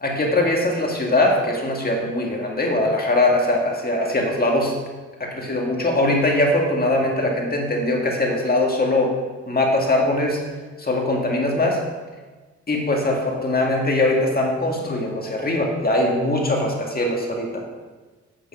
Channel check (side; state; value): both; normal; correlation 0.21